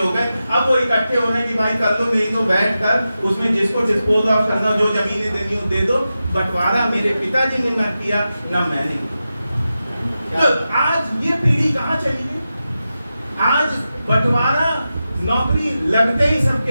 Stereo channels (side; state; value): both; inverted; correlation -0.92